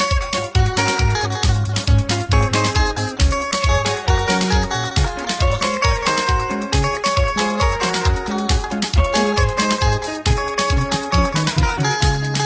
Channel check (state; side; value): identical; both; correlation 1.00